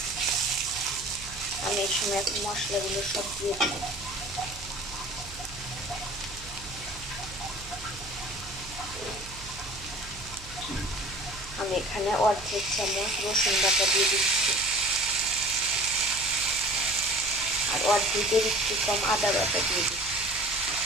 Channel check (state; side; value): noise; right; hum, 16 dB below the sound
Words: আমি এই সময় এখন মশলাগুলো সব দিয়ে দেব। আমি এখানে অর্ধেক চামচ রসুন বাটা দিয়ে দিচ্ছি, আর অর্ধেকের একটু কম আদা বাটা দিয়ে দিচ্ছি।